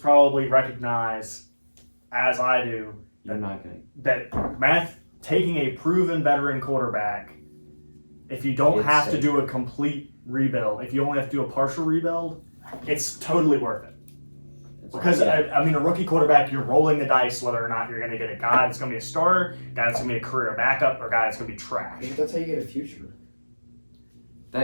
recognize, as I do, you're not gonna. that taking a proven veteran quarterback, if you don't It's have to safe. do a complete rebuild, if you only have to do a partial rebuild, it's totally worth it. Because yeah. I mean, a rookie quarterback, you're rolling the dice whether or not you're going to get a guy that's going to be a starter, a guy that's going to be a career backup, or a guy that's going to be trash. But that's how you get a future.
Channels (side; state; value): both; inverted; correlation -1.00